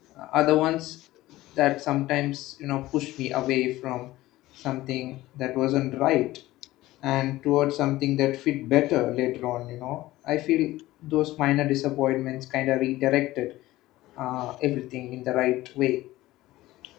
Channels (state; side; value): quieter; right; 17.0 dB